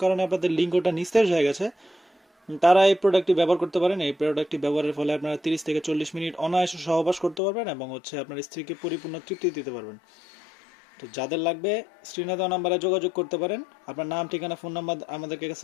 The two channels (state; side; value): drops out; right; at 7.4 s